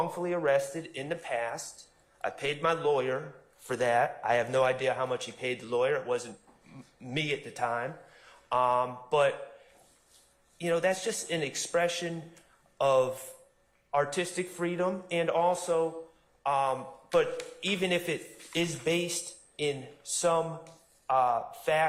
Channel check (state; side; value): identical; both; correlation 1.00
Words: arrested in the past. I paid my lawyer for that. I have no idea how much he paid the lawyer. It wasn't me at the time. But, you know, that's just an expression of artistic freedom, and also, but even if it is based in some